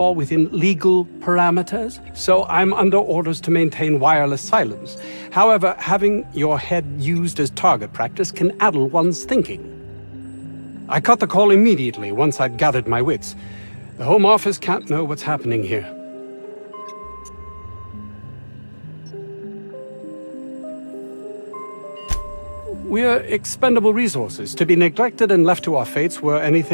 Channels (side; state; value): both; inverted; correlation -1.00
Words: within legal parameters, so I'm under orders to maintain wireless silence. However, having your head used as target practice can addle one's thinking. I cut the call immediately once I'd gathered my wits. The Home Office can't know what's happening here. We're expendable resources, to be neglected and left to our fates were